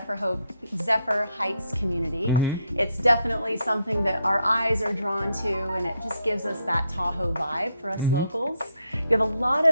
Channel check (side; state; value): both; inverted; correlation -0.77